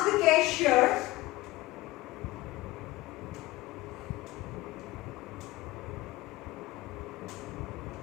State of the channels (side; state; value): right; quieter; 19.2 dB